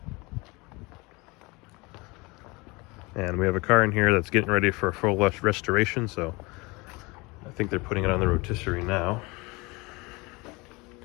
And we have a car in here that's getting ready for a full restoration, so I think they're putting it on the rotisserie now.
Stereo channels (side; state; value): right; quieter; 25.3 dB